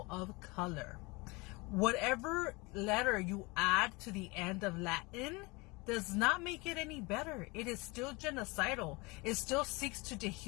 of color. Whatever letter you add to the end of Latin does not make it any better. It is still genocidal. It still seeks to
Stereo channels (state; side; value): quieter; right; 25.6 dB